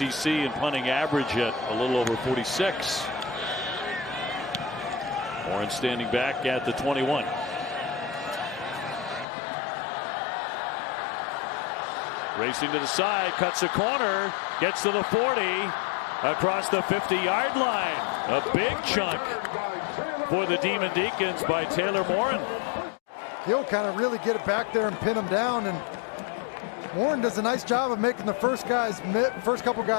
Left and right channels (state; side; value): drops out; right; at 9.2 s